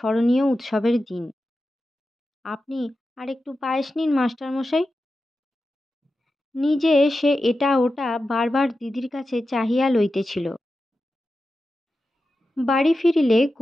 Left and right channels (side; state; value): both; normal; correlation 0.92